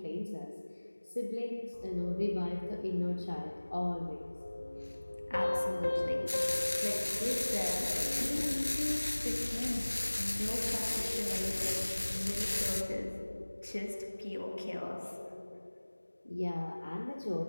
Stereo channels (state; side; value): inverted; both; correlation -1.00